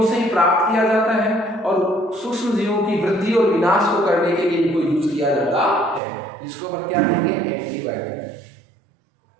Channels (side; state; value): left; drops out; at 6.0 s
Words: से ही प्राप्त किया जाता है और सूक्ष्म जीवों की वृद्धि और विनाश को करने के लिए इनको यूज किया जाता है, जिसको हम क्या कहेंगे, एंटीबायोटिक।